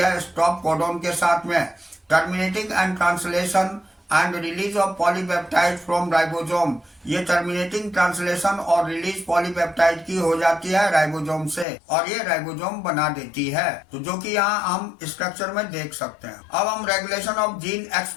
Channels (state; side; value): drops out; right; at 11.7 s